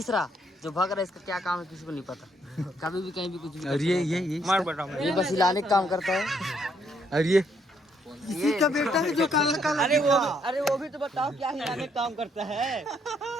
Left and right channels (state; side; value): normal; both; correlation 0.71